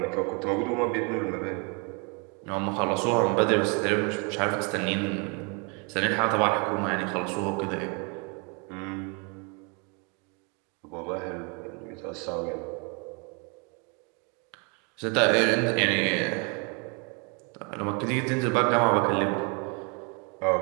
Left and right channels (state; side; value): quieter; left; 33.8 dB